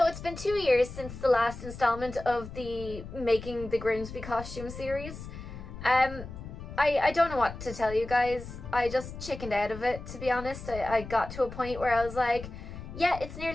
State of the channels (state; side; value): noise; left; rumble, 11 dB below the sound